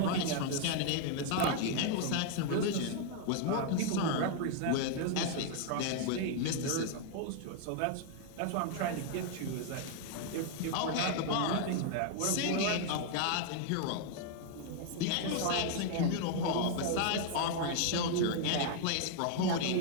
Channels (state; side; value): different; both; correlation 0.00